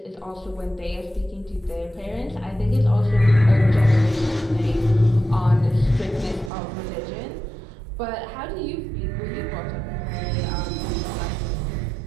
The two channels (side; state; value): left; drops out; at 6.5 s